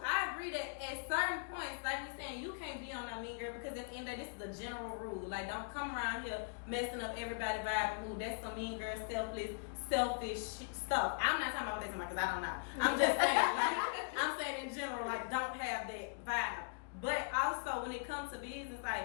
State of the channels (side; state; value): right; quieter; 38.0 dB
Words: I agree that at certain points, like we saying, you can't be on that mean girl because at the end of the day, this is a general rule. Like, don't come around here messing up everybody's vibe and mood. That's some mean girl, selfish stuff. I'm not talking about this because I don't know. I'm just saying, like, I'm saying in general, like, don't have that vibe. But also, when it comes to business,